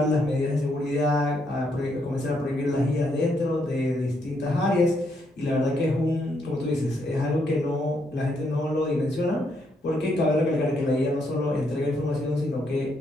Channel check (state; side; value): normal; both; correlation 0.75